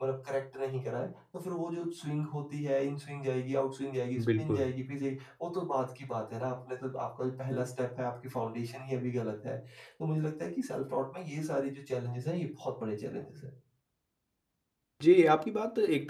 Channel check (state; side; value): identical; both; correlation 1.00